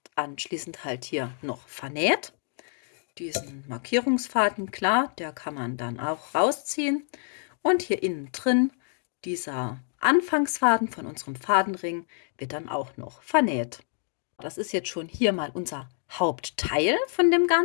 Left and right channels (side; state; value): right; silent; digital silence